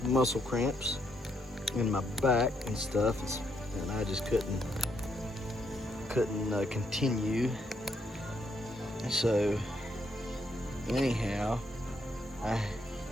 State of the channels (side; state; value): both; normal; correlation 0.75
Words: muscle cramps in my back and stuff, and I just couldn't continue. So anyhow, I